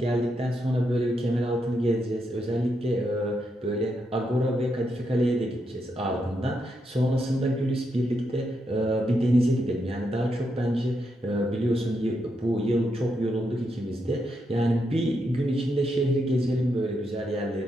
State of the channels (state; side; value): normal; both; correlation 0.82